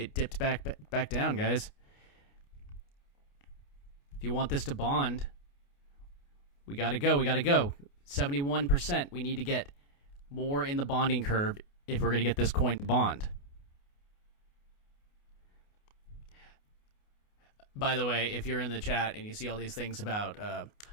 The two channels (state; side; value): late; right; 29 ms